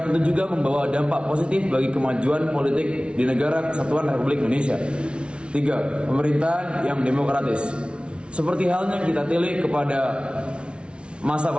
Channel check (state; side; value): late; left; 0.058 ms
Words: tentu juga membawa dampak positif bagi kemajuan politik di negara Kesatuan Republik Indonesia. Tiga, pemerintahan yang demokratis. Seperti halnya kita tilik kepada masa